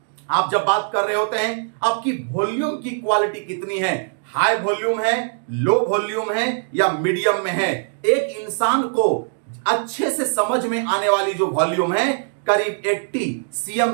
आप जब बात कर रहे होते हैं, आपकी वॉल्यूम की क्वालिटी कितनी है, हाई वॉल्यूम है, लो वॉल्यूम है या मीडियम में है। एक इंसान को अच्छे से समझ में आने वाली जो वॉल्यूम है करीब 80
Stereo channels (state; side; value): silent; left; digital silence